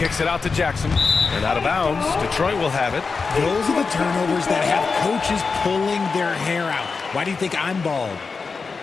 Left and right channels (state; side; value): quieter; right; 4.7 dB